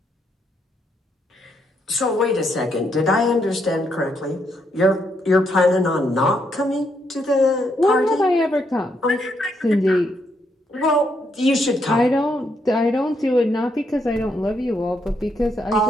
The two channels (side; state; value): both; normal; correlation 0.77